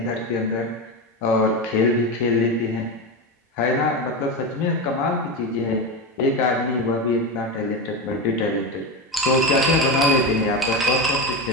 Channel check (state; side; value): normal; both; correlation 0.17